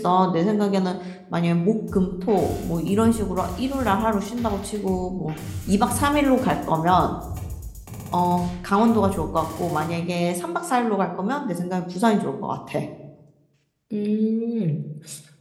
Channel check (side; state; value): both; identical; correlation 1.00